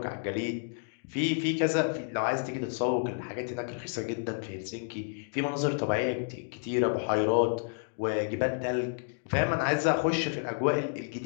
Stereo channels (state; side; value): silent; right; digital silence